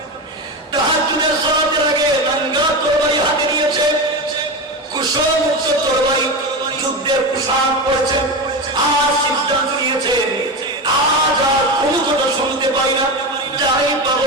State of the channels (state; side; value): normal; both; correlation 0.20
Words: তাহাজ্জুদের সালাতের আগে নাঙ্গা তরবারি হাতে নিয়েছে, কুশলমুক্ত তরবারি, যুদ্ধের পোশাক পরেছেন। আর সিদ্ধান্ত নিয়েছেন, আজ আর কোনো কথা শুনতে পাই না, যাই পাবো